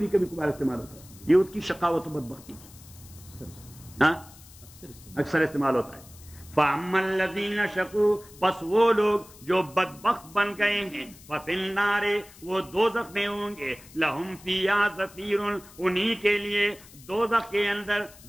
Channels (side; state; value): left; noise; hiss, 21 dB below the sound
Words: کبھی کبھار استعمال ہوتا ہے. یہ اس کی شقاوت و بدبختی تھی، ہاں اکثر استعمال ہوتا ہے. فَأَمَّا الَّذِينَ شَقُوا، پس وہ لوگ جو بدبخت بن گئے ہیں، فَفِي النَّارِ، وہ دوزخ میں ہوں گے. لَهُمْ فِيهَا زَفِيرٌ، انہی کے لیے دوزخ کے اندر